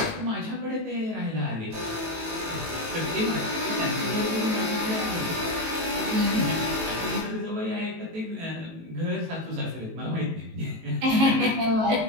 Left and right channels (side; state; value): left; late; 18 ms